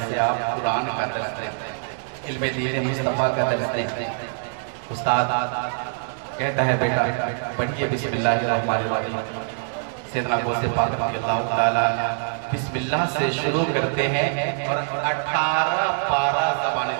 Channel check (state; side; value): silent; left; digital silence